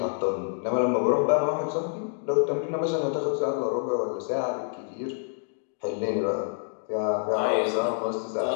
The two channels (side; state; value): right; silent; 60 dB below the other